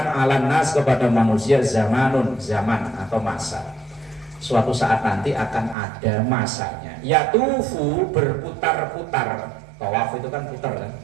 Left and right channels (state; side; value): drops out; left; at 5.8 s